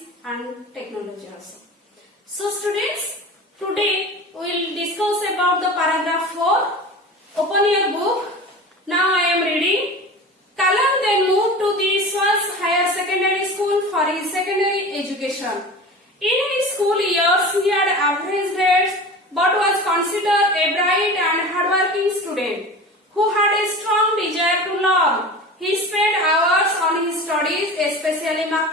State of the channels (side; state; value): both; normal; correlation 0.34